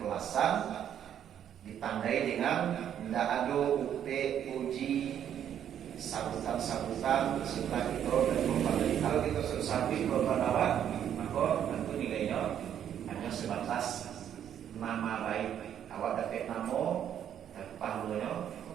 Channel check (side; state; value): left; quieter; 9.7 dB